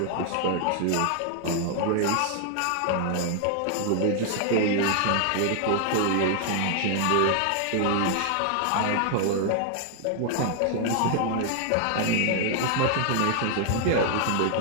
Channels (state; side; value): different; both; correlation 0.00